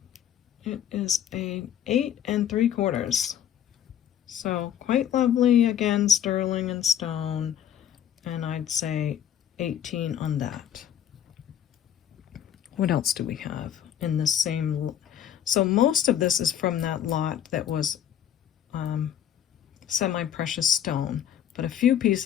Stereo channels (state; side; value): quieter; right; 10.0 dB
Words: It is a 8 3/4. So quite lovely, again, sterling and stone, and I'd say 18 on that. What else do we have in the same? So most of this is from that lot that was semi-precious stone. but a few